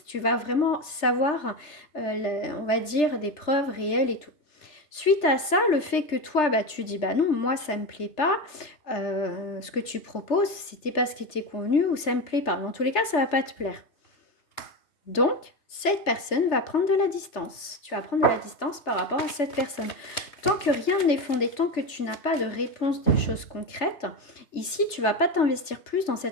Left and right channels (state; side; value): late; right; 3.3 ms